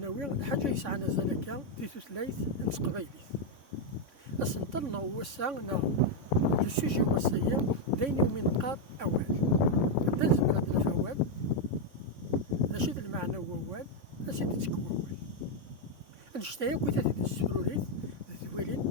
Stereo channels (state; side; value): late; left; 3.6 ms